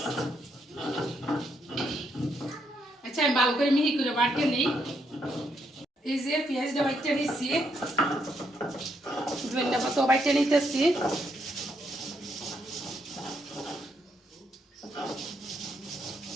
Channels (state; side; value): normal; both; correlation 0.76